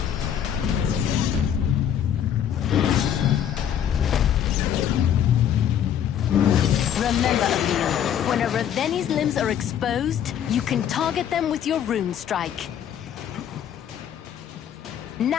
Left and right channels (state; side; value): quieter; right; 9.5 dB